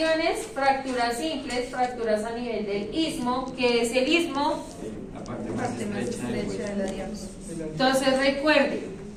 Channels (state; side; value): identical; both; correlation 1.00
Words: fracturas simples, fracturas a nivel del istmo. ¿Qué es el istmo? La parte más estrecha del hueso. Entonces recuerden